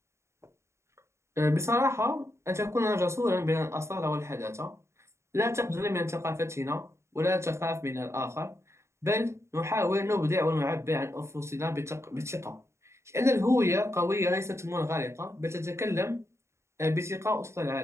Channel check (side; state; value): left; late; 0.13 ms